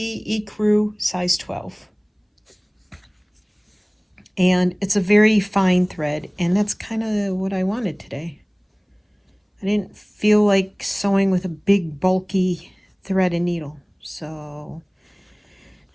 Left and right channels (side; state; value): both; identical; correlation 1.00